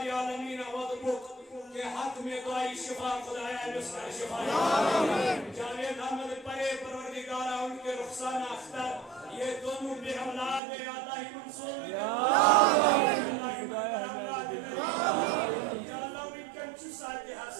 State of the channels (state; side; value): drops out; left; at 10.6 s